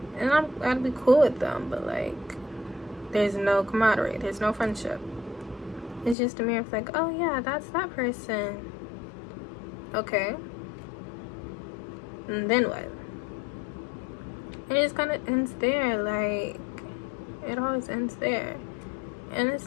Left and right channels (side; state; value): right; drops out; at 6.2 s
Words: and I'd be cool with them, but like, there's no camaraderie, there's no friendship. It's just a mere of like, oh yeah, that's that person. Okay. And then what? And it just kind of ends there. Like, it always ends there. And